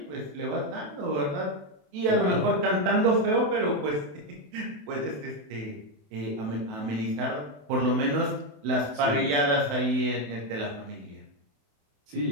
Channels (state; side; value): late; left; 28 ms